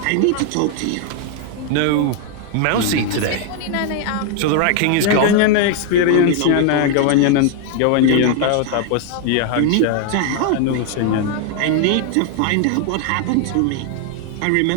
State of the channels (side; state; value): both; different; correlation 0.00